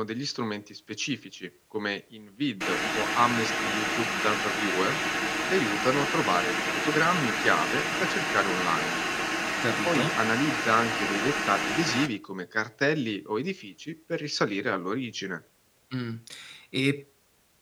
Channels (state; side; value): identical; both; correlation 1.00